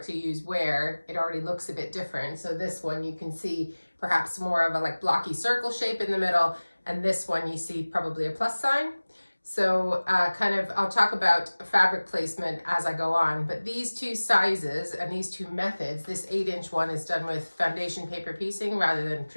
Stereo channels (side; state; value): both; inverted; correlation -1.00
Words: you use where, it already looks a bit different. So this one you can see perhaps more of a like blocky circle shape in the middle, and this one you see probably a plus sign. So I'll talk about fabric placement as I go on, but these two sizes and these two methods, this 8 inch one is done with foundation paper piecing rather than